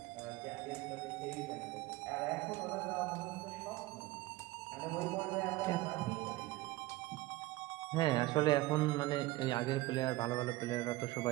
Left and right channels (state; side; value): quieter; left; 18.6 dB